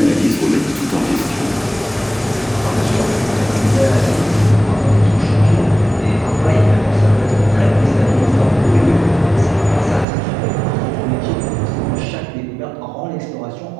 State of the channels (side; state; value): left; drops out; at 10.1 s